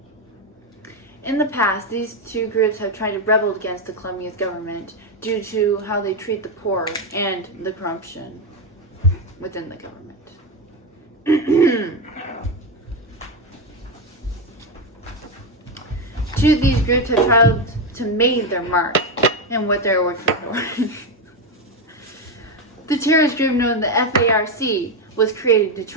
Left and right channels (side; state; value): both; normal; correlation 0.09